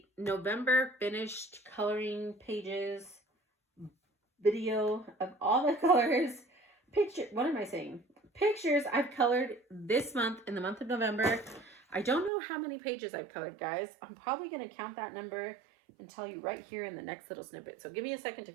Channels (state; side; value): drops out; left; at 12.3 s